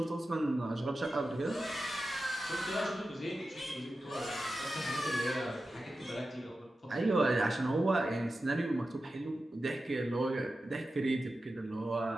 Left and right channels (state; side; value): normal; both; correlation 0.92